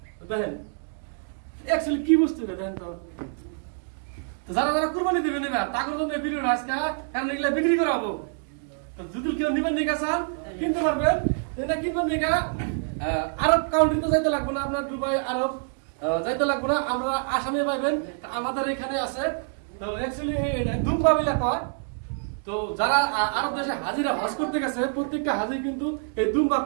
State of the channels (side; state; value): left; silent; 61 dB below the other